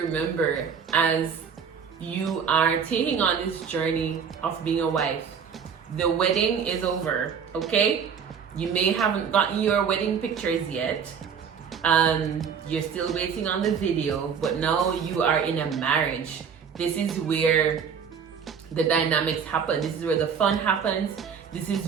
as you are taking on this journey of being a wife. The wedding is over, okay? You may haven't gotten your wedding pictures yet. You're still waiting on the video, but now you are in a marriage. This is where the dynamics happen. This is where the fun happens. This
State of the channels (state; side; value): quieter; left; 6.9 dB